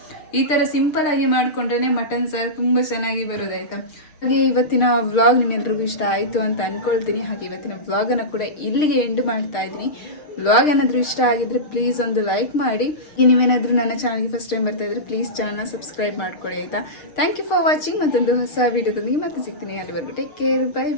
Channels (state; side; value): late; right; 6.6 ms